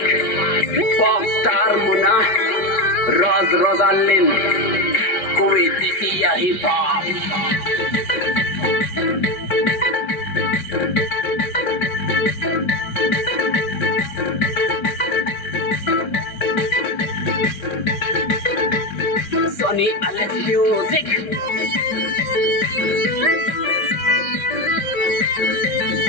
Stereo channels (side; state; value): right; late; 5.1 ms